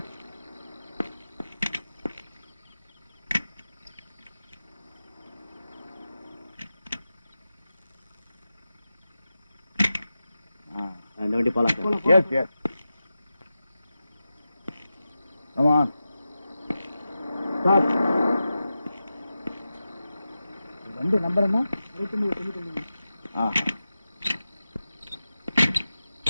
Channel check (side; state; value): both; inverted; correlation -0.92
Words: இந்த வண்டி போலாம் sir. Yes yes. Come on. Stop. வண்டி நம்பர் என்ன? 69.